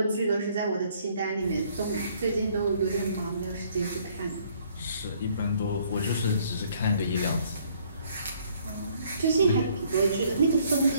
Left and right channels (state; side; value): inverted; both; correlation -0.63